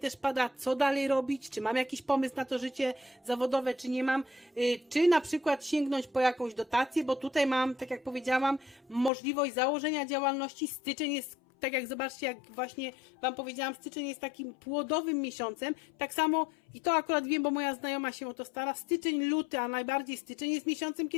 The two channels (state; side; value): drops out; right; at 9.1 s